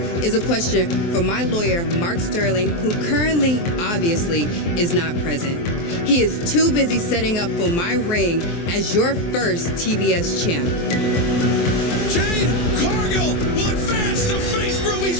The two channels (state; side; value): late; right; 23 ms